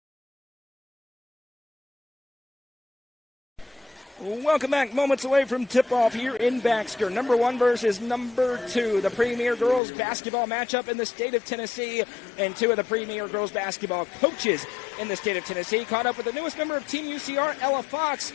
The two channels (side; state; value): right; drops out; at 9.8 s